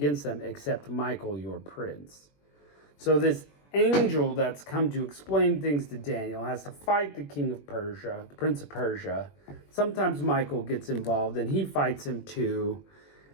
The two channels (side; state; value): right; late; 21 ms